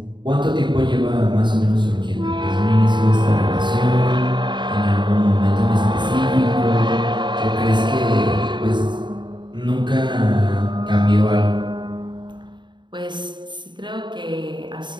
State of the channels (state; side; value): late; left; 0.22 ms